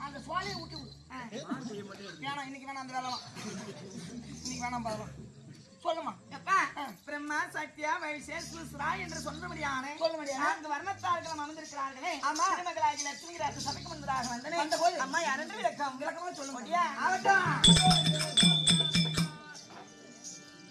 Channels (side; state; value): both; identical; correlation 1.00